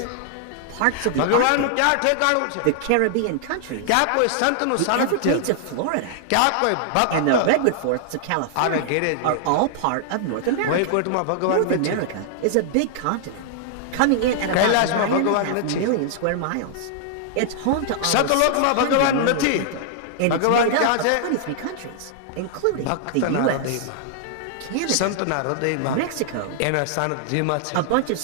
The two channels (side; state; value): both; different; correlation -0.01